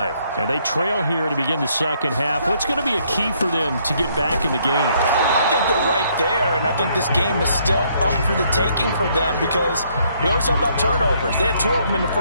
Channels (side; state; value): both; inverted; correlation -0.69